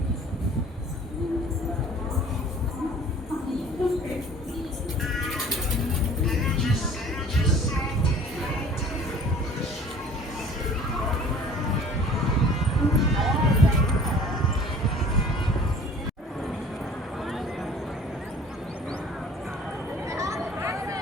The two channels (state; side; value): normal; both; correlation 0.49